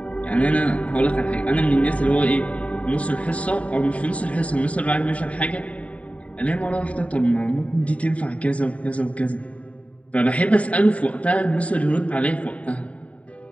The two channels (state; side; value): late; right; 0.066 ms